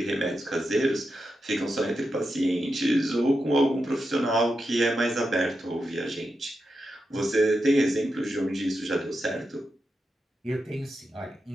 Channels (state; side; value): normal; both; correlation 0.88